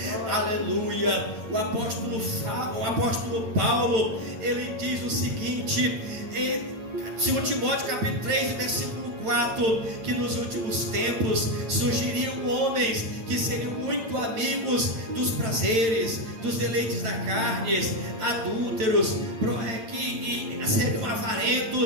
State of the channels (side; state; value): left; late; 8.8 ms